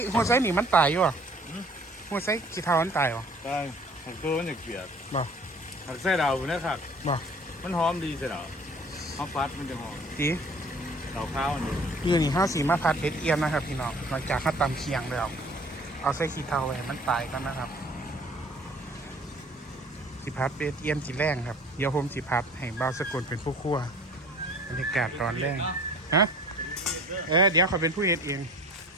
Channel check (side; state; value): both; normal; correlation 0.50